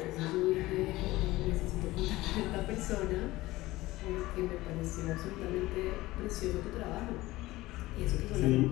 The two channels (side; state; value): right; quieter; 18.4 dB